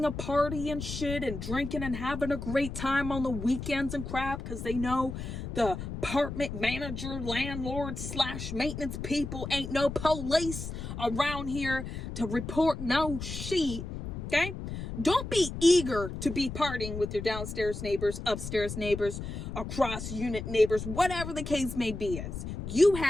a party and shit and drinking and having a great time on the weekends and crap because they know the apartment manager, landlord / maintenance people ain't no police around here to report no shit. Okay? Don't be eager to be partying with your downstairs neighbors, upstairs neighbors, across unit neighbors, whatever the case may be is. You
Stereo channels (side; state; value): left; noise; rumble, 7 dB below the sound